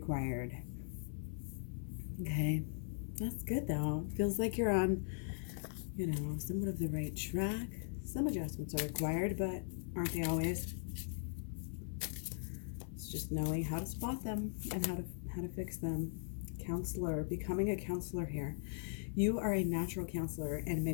Okay, that's good though. Feels like you're on, somewhat of the right track. Some adjustments are required, but aren't they always? It's just knowing how to spot them and how to fix them. Counselor, becoming a counselor here. You are a natural counselor, and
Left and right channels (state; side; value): silent; right; 51 dB below the other